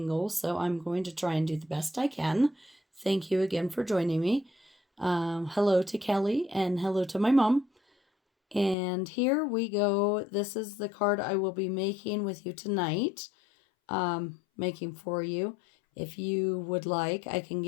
so I'm going to try and do the best I can. Thank you again for joining me. Hello to Kelly and hello to my mom. And here we go. This is the card I will be making with you tonight. Making for you. If you would like, I can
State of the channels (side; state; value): right; drops out; at 8.8 s